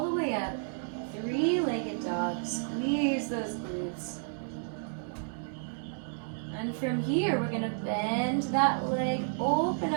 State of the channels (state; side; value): silent; left; digital silence